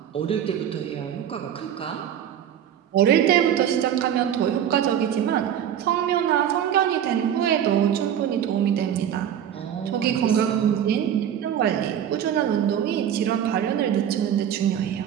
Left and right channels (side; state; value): left; quieter; 9.7 dB